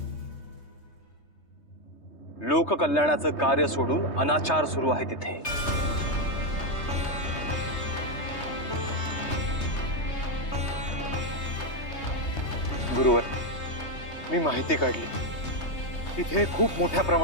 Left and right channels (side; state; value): right; late; 3.3 ms